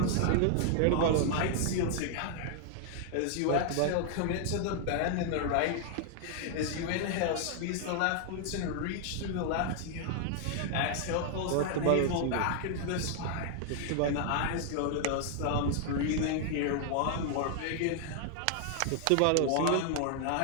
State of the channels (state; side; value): different; both; correlation 0.00